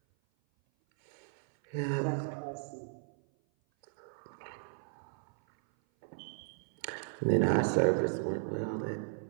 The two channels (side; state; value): left; silent; 54 dB below the other